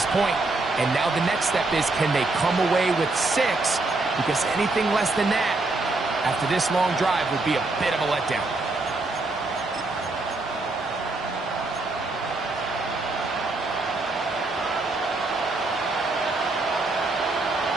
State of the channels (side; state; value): left; quieter; 3.2 dB